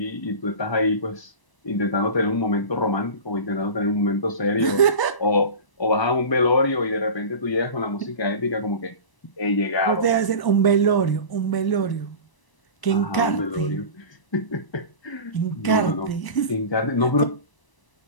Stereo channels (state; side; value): late; right; 1.0 ms